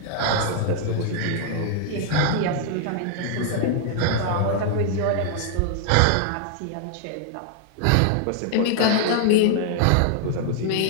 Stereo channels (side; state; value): both; different; correlation 0.00